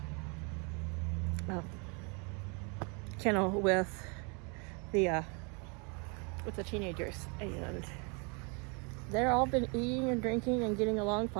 kennel with the teenagers, and they're all been eating and drinking and getting along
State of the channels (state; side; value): quieter; left; 34.1 dB